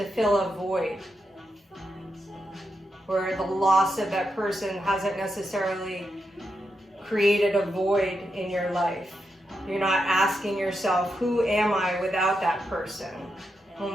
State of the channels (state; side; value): normal; both; correlation 0.85